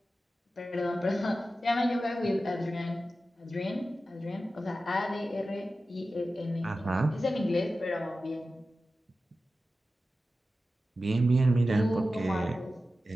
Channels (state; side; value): normal; both; correlation 0.93